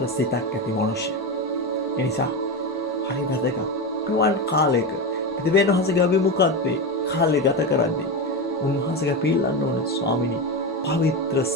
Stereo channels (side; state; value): both; normal; correlation 0.17